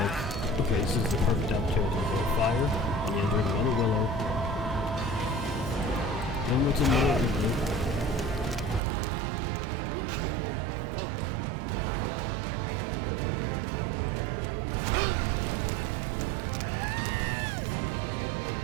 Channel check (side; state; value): left; drops out; at 8.8 s